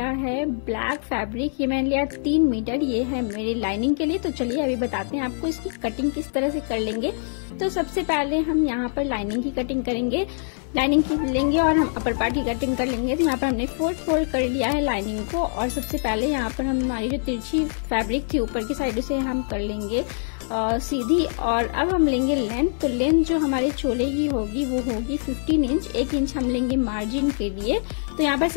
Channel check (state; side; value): silent; right; digital silence